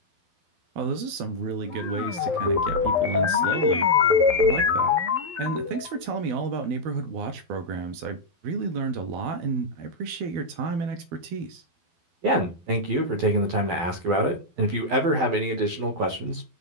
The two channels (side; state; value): left; late; 12 ms